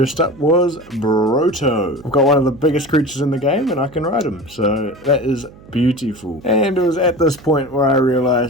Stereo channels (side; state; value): right; noise; hum, 22 dB below the sound